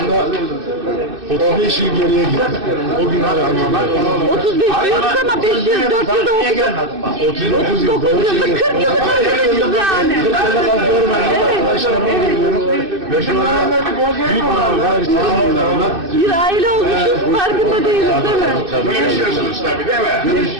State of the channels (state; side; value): late; left; 2.6 ms